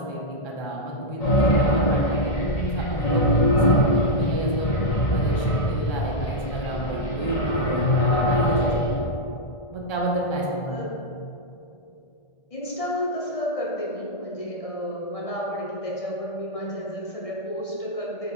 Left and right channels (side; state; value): right; late; 1.3 ms